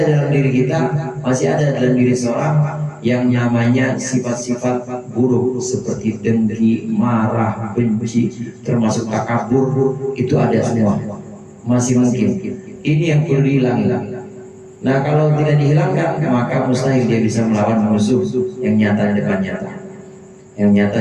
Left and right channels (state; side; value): identical; both; correlation 1.00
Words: diri kita, masih ada dalam diri seorang yang namanya sifat-sifat buruk seperti dengki, marah, benci, termasuk takabur, itu ada semua. Masih mungkin. Ini yang perlu dihilangkan. Nah, kalau tidak dihilangkan, maka mustahil dia bisa melawan musuh yang nyata di depan yang